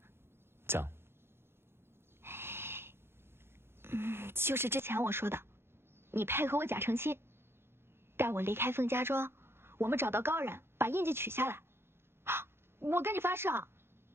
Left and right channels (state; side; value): late; left; 0.11 ms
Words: 讲。就是之前我说的，你配合我假成亲，带我离开凤家庄，我们找到高人，把印记取下来。我跟你发誓啊，